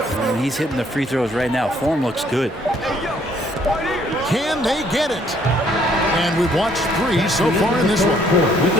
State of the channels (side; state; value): both; normal; correlation 0.65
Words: he's hitting the free throws right now. Form looks good. Can they get it? And we've watched 3 so far in this one.